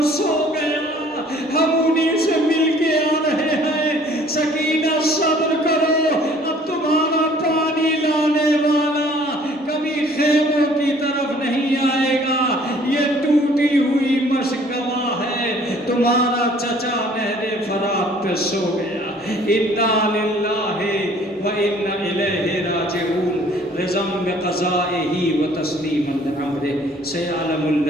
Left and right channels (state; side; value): normal; both; correlation 0.56